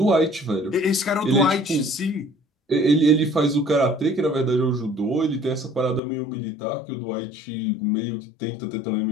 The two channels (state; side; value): drops out; right; at 6.0 s